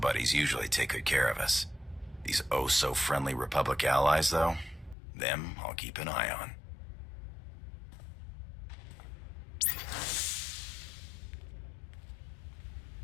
usually take good care of us. These oh-so-friendly Republic allies, though, them I'll keep an eye on.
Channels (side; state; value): right; drops out; at 5.0 s